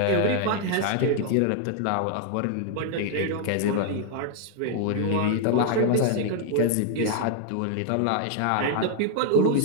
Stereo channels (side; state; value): both; different; correlation 0.00